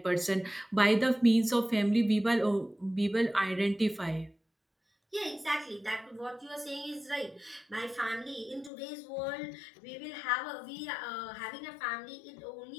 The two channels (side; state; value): right; drops out; at 8.7 s